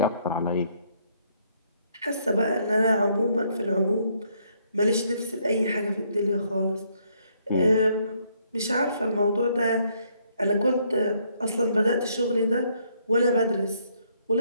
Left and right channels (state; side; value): inverted; both; correlation -0.70